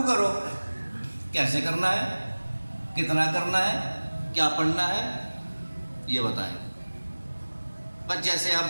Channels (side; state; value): both; inverted; correlation -1.00